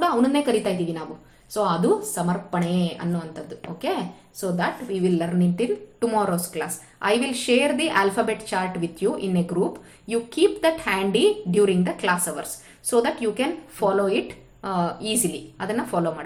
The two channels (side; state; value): both; identical; correlation 1.00